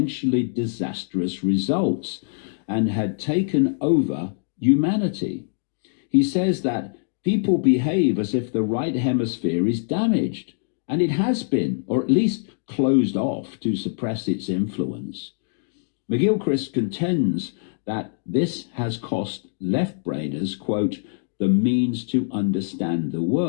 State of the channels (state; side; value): silent; right; digital silence